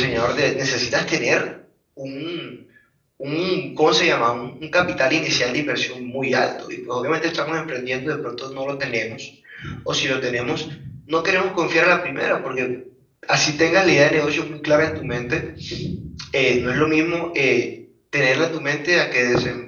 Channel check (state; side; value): identical; both; correlation 1.00